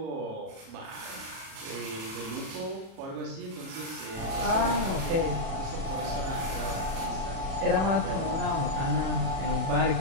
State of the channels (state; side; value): late; left; 37 ms